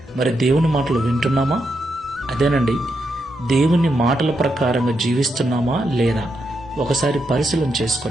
మరి దేవుని మాటలు వింటున్నామా? అదేనండి, దేవుని మాటల ప్రకారంగా జీవిస్తున్నామా లేదా ఒకసారి పరిశీలన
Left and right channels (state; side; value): normal; both; correlation 0.82